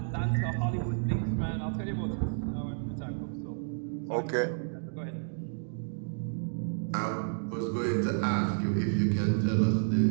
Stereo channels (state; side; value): silent; left; digital silence